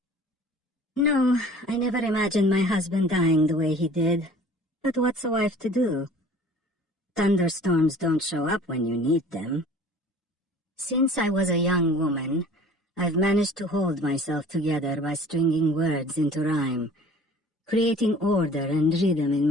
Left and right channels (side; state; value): both; normal; correlation 0.47